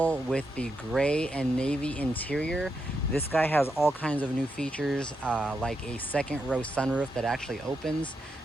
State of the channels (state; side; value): normal; both; correlation 0.84